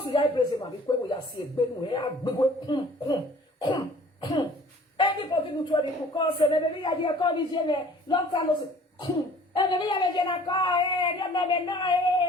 we are praising my because we are seeing Benu, anybody who told me to call, say, maybe I did call this year, long time no say, and maybe I did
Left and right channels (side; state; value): both; normal; correlation 0.52